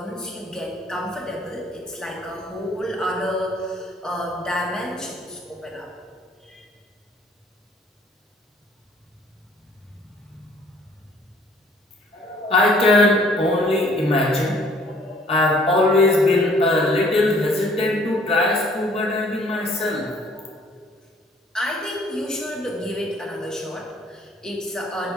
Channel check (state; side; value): normal; both; correlation 0.58